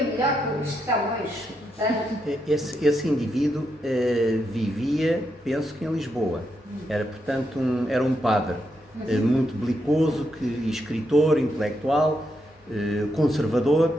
melhor que o Luís de Camões. Portanto, esse indivíduo vivia, penso que em Lisboa. Era, portanto, era um padre muito belicoso, escritor, intelectual,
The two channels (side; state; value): both; normal; correlation 0.82